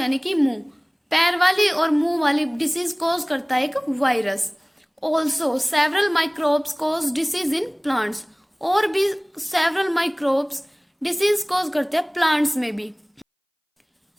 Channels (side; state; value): both; identical; correlation 1.00